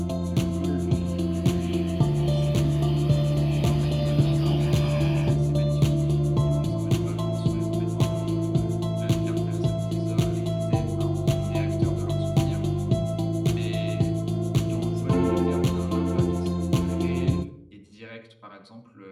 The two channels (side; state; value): both; identical; correlation 1.00